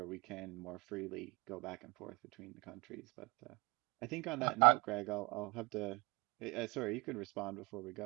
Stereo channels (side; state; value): left; quieter; 27.3 dB